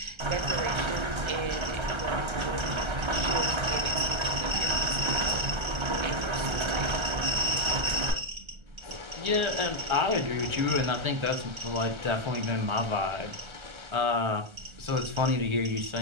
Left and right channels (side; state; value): left; late; 1.3 ms